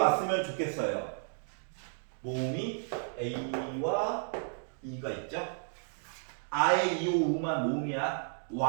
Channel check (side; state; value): left; silent; digital silence